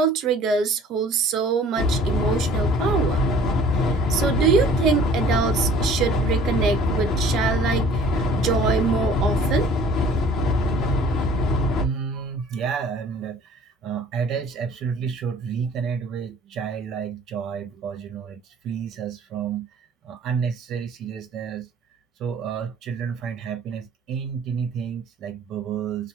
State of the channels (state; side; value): normal; both; correlation 0.51